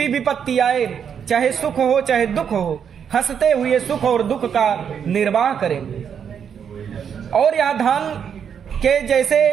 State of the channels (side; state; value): left; quieter; 7.7 dB